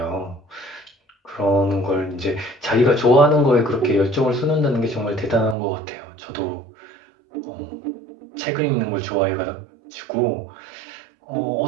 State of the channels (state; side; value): drops out; left; at 5.6 s